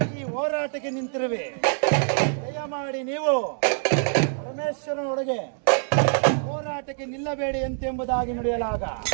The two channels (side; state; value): left; silent; 62 dB below the other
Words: ಈ ಹೋರಾಟಕ್ಕೆ ನಿಂತಿರುವೆ, ದಯಮಾಡಿ ನೀವು ಪರಮೇಶ್ವರನೊಳಗೆ ಹೋರಾಟಕ್ಕೆ ನಿಲ್ಲಬೇಡಿ ಎಂತೆಂಬುದಾಗಿ ನುಡಿಯಲಾಗ